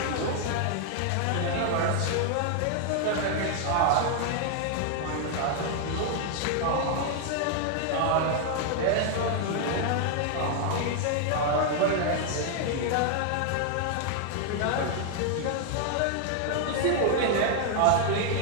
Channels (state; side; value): different; both; correlation 0.00